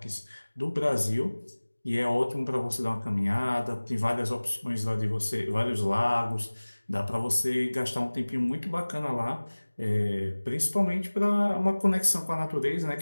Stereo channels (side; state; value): both; inverted; correlation -1.00